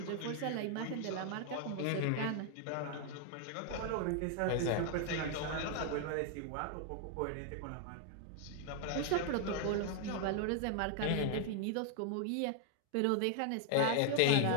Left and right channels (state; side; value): different; both; correlation 0.00